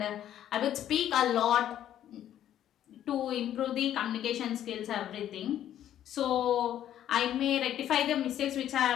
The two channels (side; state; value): right; quieter; 11.2 dB